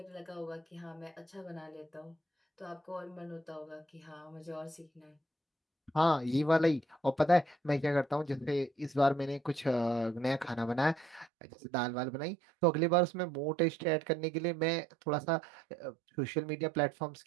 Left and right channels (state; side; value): drops out; left; at 11.3 s